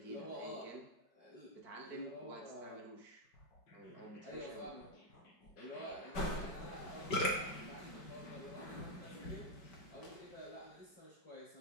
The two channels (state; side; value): late; right; 5.2 ms